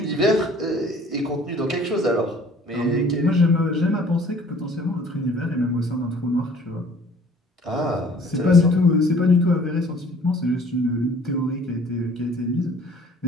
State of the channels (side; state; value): both; normal; correlation 0.53